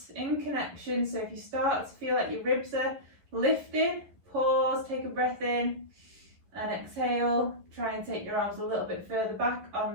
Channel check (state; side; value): late; left; 11 ms